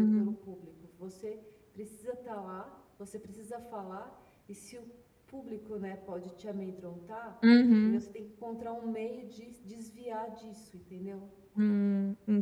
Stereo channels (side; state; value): both; identical; correlation 1.00